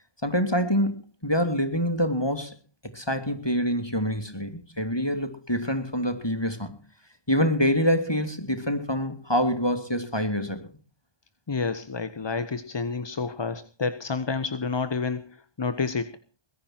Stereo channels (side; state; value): right; late; 1.2 ms